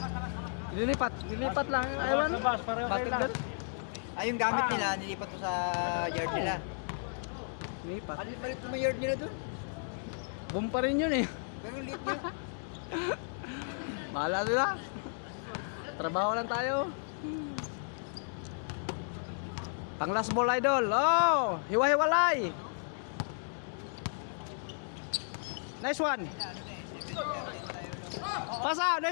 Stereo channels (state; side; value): silent; right; digital silence